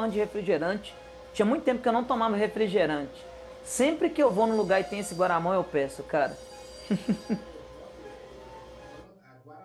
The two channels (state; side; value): identical; both; correlation 1.00